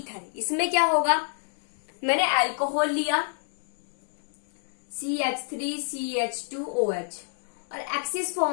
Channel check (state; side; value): silent; right; digital silence